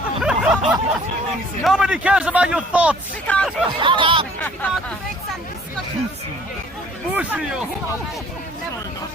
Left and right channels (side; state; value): both; normal; correlation 0.54